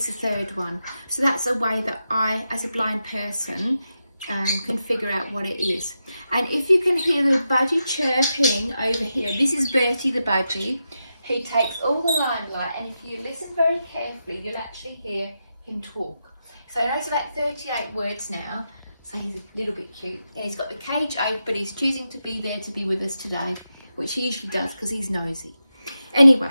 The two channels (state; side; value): inverted; both; correlation -0.88